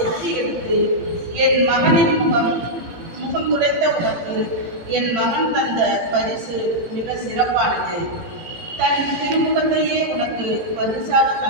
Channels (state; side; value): late; left; 18 ms